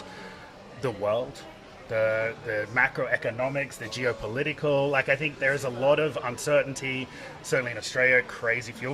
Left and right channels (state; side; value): identical; both; correlation 1.00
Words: the world, the macroeconomics, the geopolitical. Like, I think there's a lot of uncertainty, certainly in Australia, crazy fuel